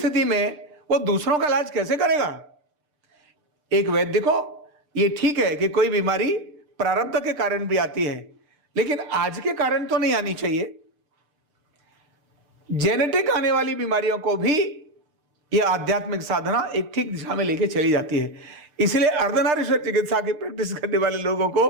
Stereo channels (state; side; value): late; left; 6.7 ms